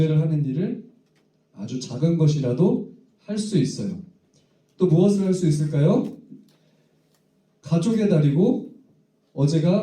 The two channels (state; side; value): identical; both; correlation 1.00